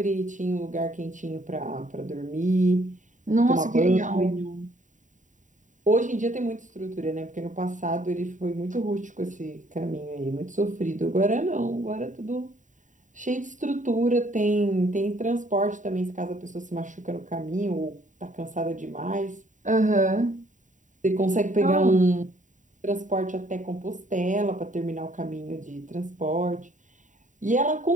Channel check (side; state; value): left; late; 0.36 ms